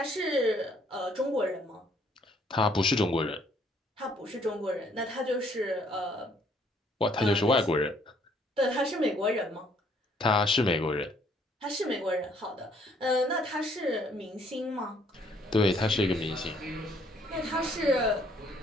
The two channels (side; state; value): both; normal; correlation 0.64